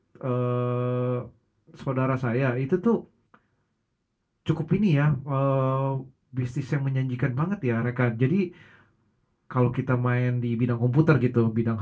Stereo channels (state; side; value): identical; both; correlation 1.00